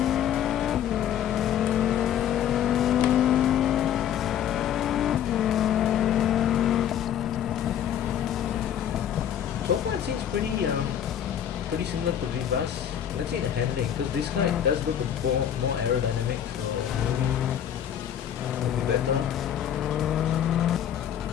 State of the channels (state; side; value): quieter; right; 9.9 dB